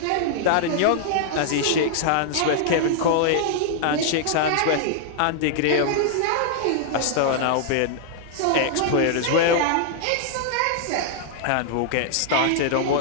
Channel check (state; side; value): different; both; correlation -0.01